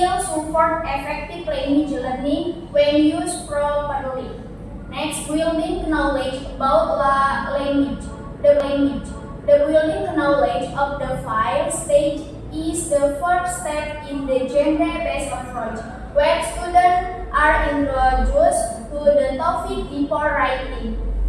support effective language learning when used properly. Next, building knowledge about language. The building knowledge of the file stage is the first step in the genre-based approach, where students are introduced to the topic before writing.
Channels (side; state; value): both; identical; correlation 1.00